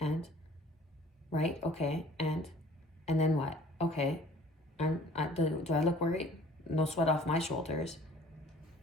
right? Okay, and then what? Okay, do I look worried? No sweat off my shoulders.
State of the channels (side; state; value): both; normal; correlation 0.51